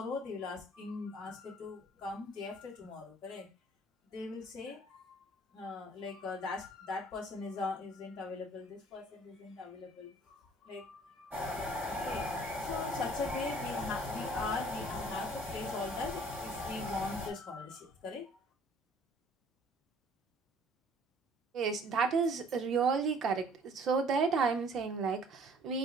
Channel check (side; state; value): both; normal; correlation 0.55